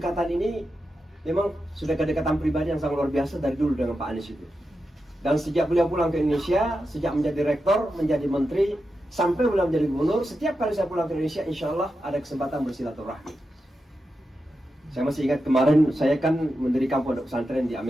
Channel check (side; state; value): both; normal; correlation 0.89